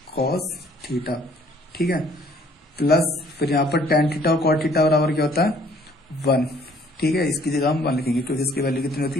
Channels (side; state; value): both; normal; correlation 0.59